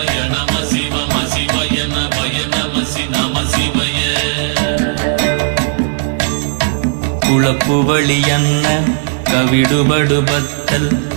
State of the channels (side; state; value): left; silent; digital silence